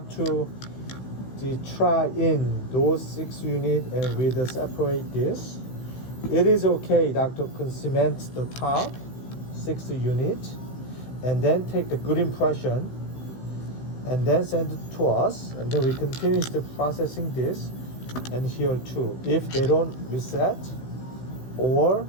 to try in those 6 units and we separate this. It is okay, doctor can cement the top 6 unit and then take the good impression and then send it to us, and then we continue the processing this and here too. If they don't reset or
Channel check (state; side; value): late; right; 16 ms